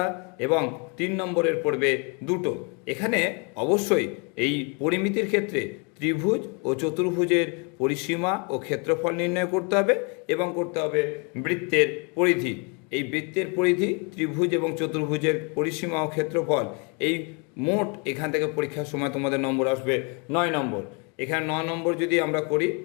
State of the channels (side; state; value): right; quieter; 34.2 dB